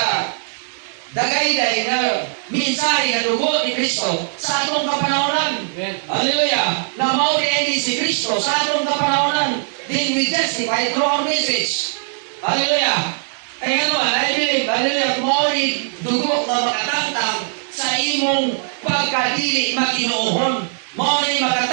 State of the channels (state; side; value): silent; left; 66 dB below the other